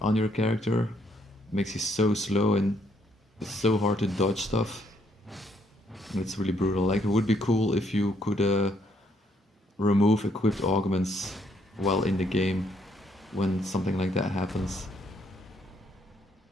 on your character makes you so slow and it's so hard to dodge stuff. It's really brutal. Like it would be cool if you could remove equipped augments while in the game when something like that happens.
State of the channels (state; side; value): normal; both; correlation 0.71